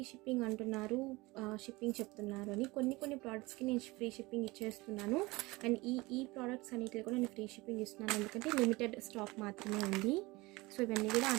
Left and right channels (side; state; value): left; quieter; 22.3 dB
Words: షిప్పింగ్ అంటున్నారు, షిప్పింగ్ చెప్తున్నారు అని. కొన్ని ప్రోడక్ట్స్కి నేను ఫ్రీ షిప్పింగ్ ఇచ్చేస్తున్నాను. అండ్ ఈ ప్రోడక్ట్స్ అన్నిటిలో కూడా నేను ఫ్రీ షిప్పింగ్ ఇస్తున్నాను, ఎందుకంటే లిమిటెడ్ స్టాక్ మాత్రమే ఉంది. సో ఇవన్నీ కూడా ఆ